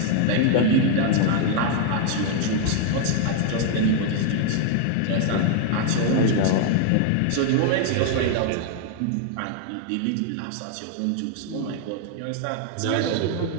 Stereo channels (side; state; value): both; different; correlation 0.00